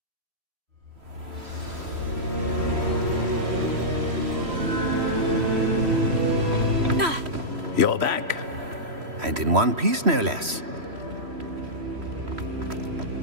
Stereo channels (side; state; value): left; late; 3.1 ms